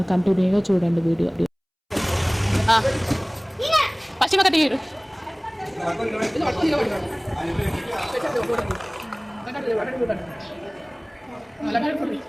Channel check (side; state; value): both; identical; correlation 1.00